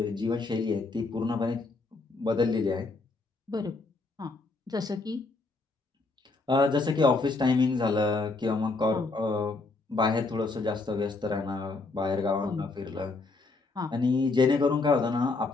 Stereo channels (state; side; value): quieter; right; 3.6 dB